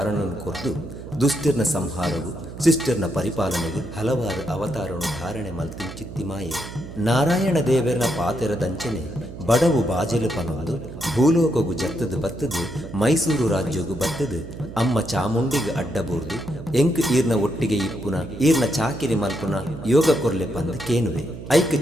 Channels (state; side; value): noise; right; hum, 12 dB below the sound